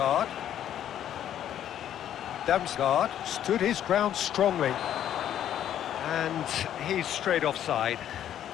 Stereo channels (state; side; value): quieter; right; 10.7 dB